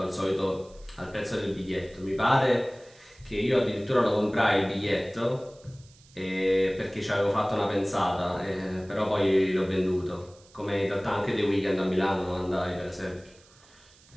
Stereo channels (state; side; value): noise; right; hiss, 27 dB below the sound